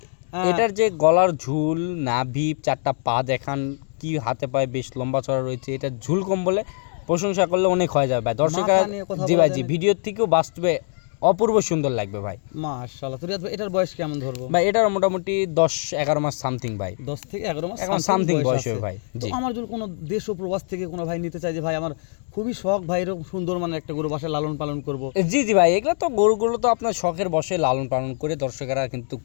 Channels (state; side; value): silent; right; digital silence